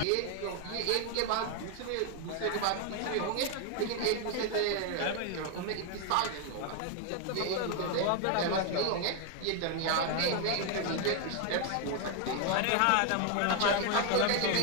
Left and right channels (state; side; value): different; both; correlation 0.01